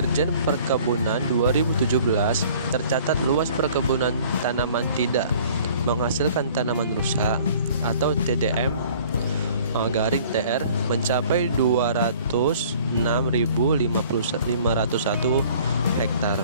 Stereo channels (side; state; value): both; inverted; correlation -0.52